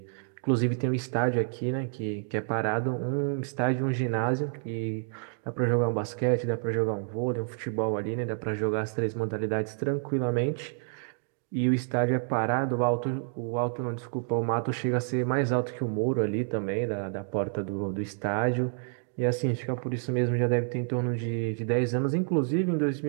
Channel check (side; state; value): left; silent; 59 dB below the other